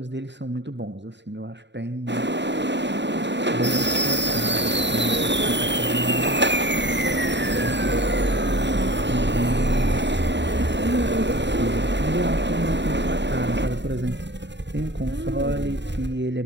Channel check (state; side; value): late; left; 0.52 ms